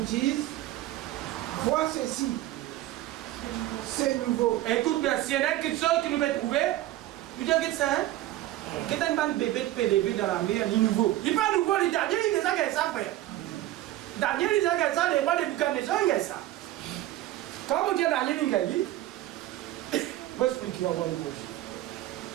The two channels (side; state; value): left; quieter; 15.1 dB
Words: dise, vois ceci, c'est nouveau. Écoute bien, s'il y en a quelque chose que nous devons trouver, il dit que ça, hein? Que t'as un bébé de PDB dans la mer, il est nouveau. Il n'est pas nouveau, il est Daniel, il est déjà qu'il ça, frère. Daniel, il est déjà qu'il ça, les rois de Buchanan, il est ça. Quand vous dites Daniel, il est dit, je vais expliquer, on va voir le prochain.